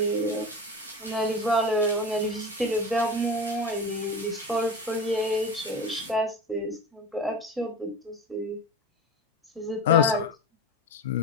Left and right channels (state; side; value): normal; both; correlation 0.28